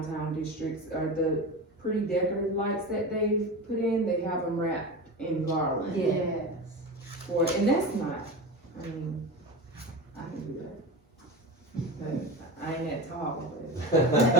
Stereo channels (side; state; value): both; normal; correlation 0.26